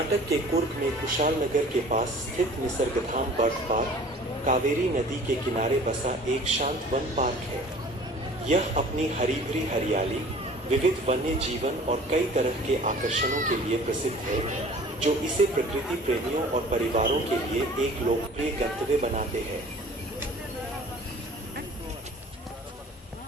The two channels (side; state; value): both; normal; correlation 0.47